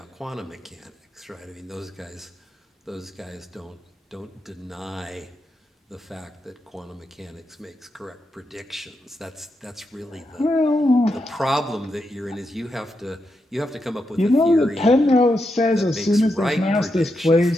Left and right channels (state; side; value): normal; both; correlation 0.85